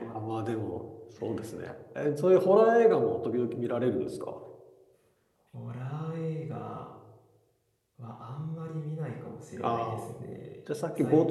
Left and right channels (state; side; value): identical; both; correlation 1.00